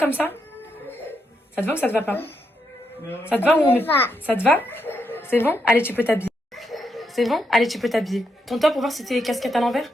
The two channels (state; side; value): normal; both; correlation 0.81